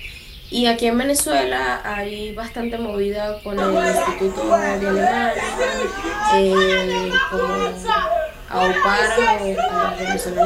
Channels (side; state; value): both; identical; correlation 1.00